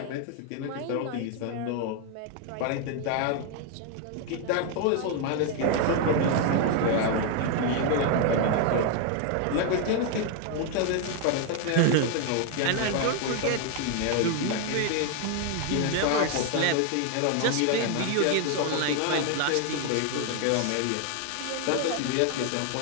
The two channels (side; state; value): both; different; correlation 0.01